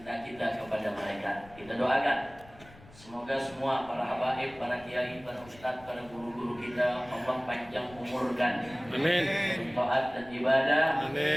kita kepada mereka. Kita doakan semoga semua para habaib, para kiai, para ustadz, para guru-guru kita Allah panjang umurkan. Amin. Taat dan ibadah.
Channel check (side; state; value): left; noise; rumble, 22 dB below the sound